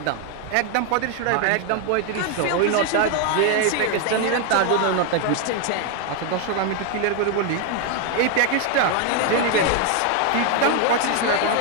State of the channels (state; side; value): different; both; correlation 0.01